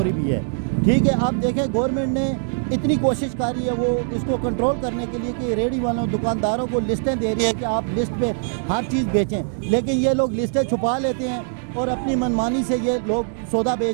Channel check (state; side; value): silent; left; digital silence